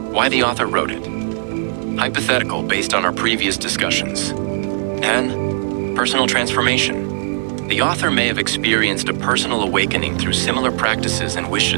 the author wrote it. Hypothetical based on our previous discussions. And personal transformation. The author may have experienced a personal awakening through similar practices and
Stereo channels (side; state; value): left; silent; 66 dB below the other